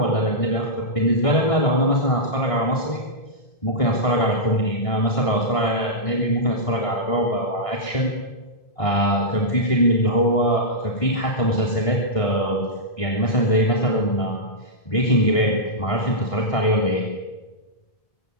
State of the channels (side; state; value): right; late; 1.6 ms